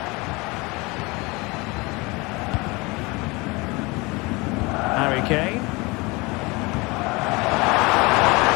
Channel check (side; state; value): right; quieter; 25.2 dB